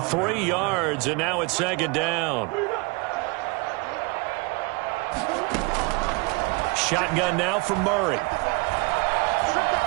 yards, and now it's second down. Shotgun now for Murray.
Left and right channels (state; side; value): quieter; left; 26.7 dB